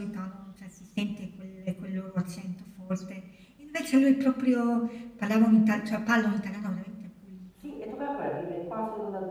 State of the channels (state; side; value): identical; both; correlation 1.00